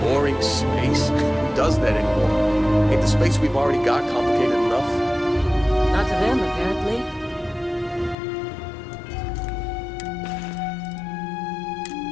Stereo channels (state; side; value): drops out; right; at 8.2 s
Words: space? Who does that anymore? Ain't the space we've already got complicated enough? Not to them, apparently.